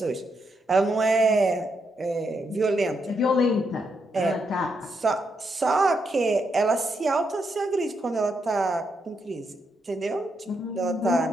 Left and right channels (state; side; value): normal; both; correlation 0.80